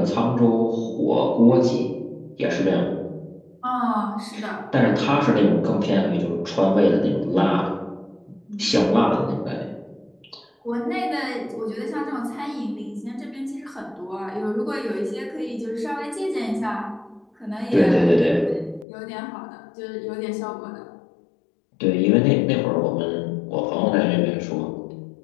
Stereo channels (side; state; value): right; drops out; at 18.9 s